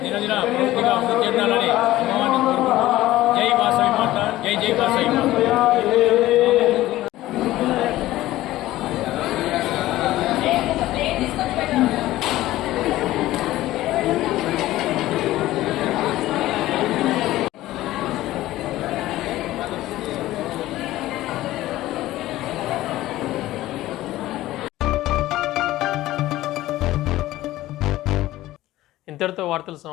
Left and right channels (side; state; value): right; quieter; 15.9 dB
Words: దినదిన పూర్తిగా అభివృద్ధి చెందాలని అమ్మవారిని కోరుకుంటూ జై వాసవి మాత, జై జై వాసవి మాత. ఇంతటితో వార్తలు